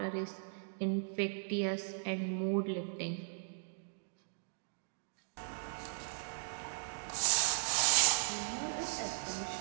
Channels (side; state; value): left; silent; digital silence